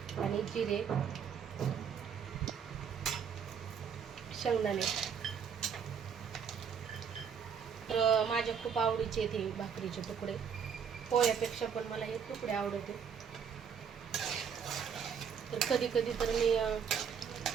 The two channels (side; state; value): left; quieter; 7.2 dB